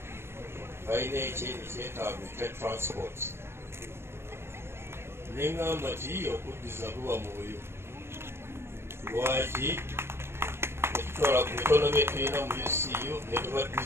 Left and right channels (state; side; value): late; left; 0.12 ms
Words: balina ekyetaago ekya transport neŋŋamba nti okuddiza buba mwoyo lwaki netutwala ku bitono bye tulina mu UCU